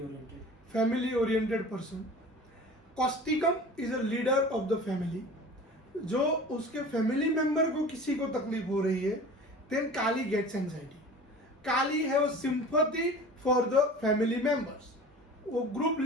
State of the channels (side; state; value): both; normal; correlation 0.40